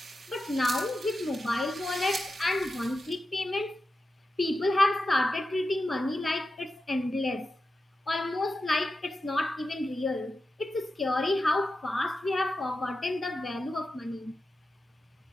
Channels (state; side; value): normal; both; correlation 0.91